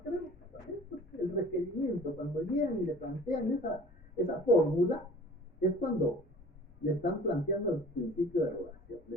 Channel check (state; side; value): normal; both; correlation 0.45